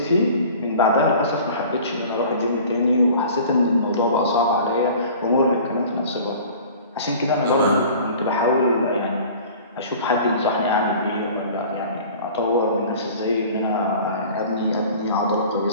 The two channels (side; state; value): both; inverted; correlation -0.44